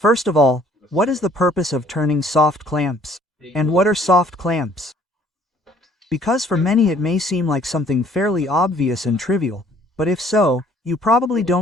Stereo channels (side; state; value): both; normal; correlation 0.59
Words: of all, what is the purpose of turning soft clamps? And what are soft clamps? Because for many it may seem like something fairly obvious and trivial, but if so, you probably